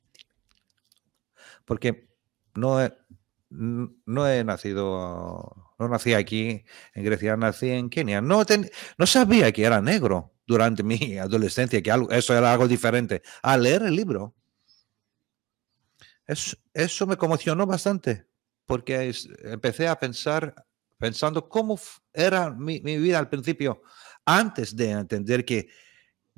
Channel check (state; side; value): quieter; left; 19.0 dB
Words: porque no nací aquí en Grecia, nací en Kenia. No sabía que era negro durante mi adolescencia, que eso era algo diferente. Al leer el libro, eso me conmocionó bastante, porque empecé a pensando cómo era mi vida al principio, antes de entender que